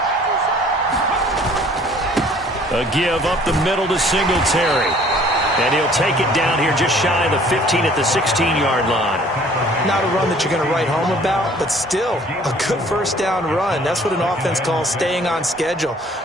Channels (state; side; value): normal; both; correlation 0.55